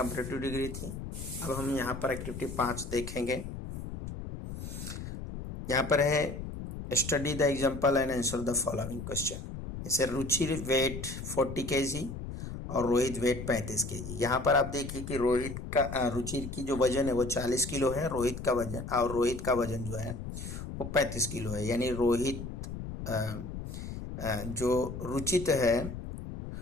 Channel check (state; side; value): noise; left; rumble, 8 dB below the sound